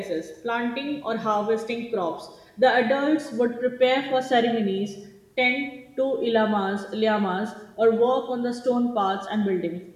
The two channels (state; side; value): identical; both; correlation 1.00